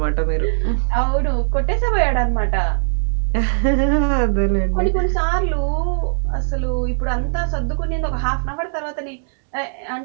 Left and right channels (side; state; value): left; silent; digital silence